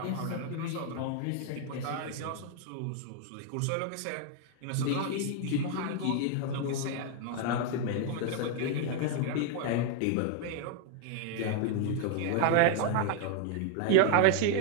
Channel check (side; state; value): both; different; correlation 0.00